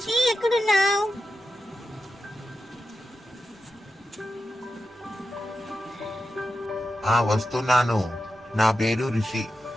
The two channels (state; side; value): normal; both; correlation 0.90